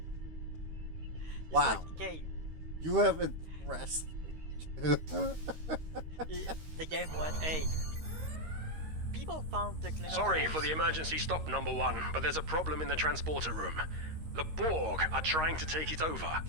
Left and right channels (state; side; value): late; left; 13 ms